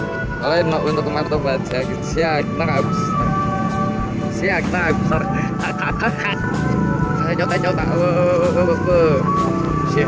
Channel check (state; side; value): identical; both; correlation 1.00